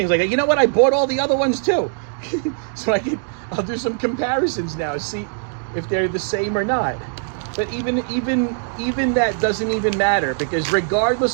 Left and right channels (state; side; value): silent; left; 65 dB below the other